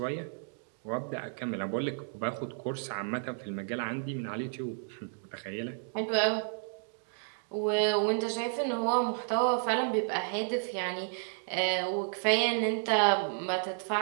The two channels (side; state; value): left; silent; digital silence